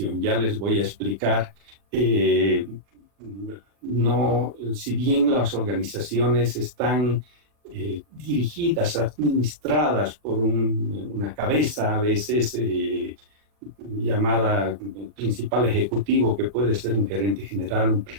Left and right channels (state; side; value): late; left; 40 ms